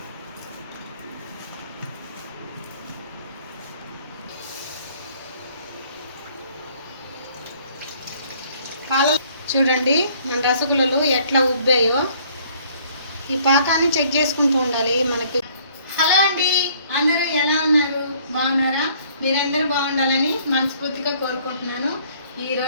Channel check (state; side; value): inverted; both; correlation -0.59